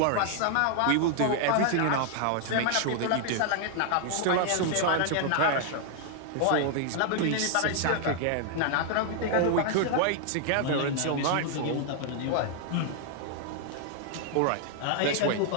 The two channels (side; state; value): both; different; correlation 0.00